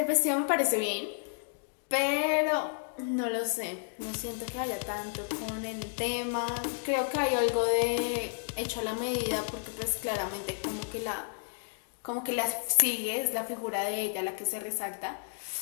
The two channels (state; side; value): silent; right; digital silence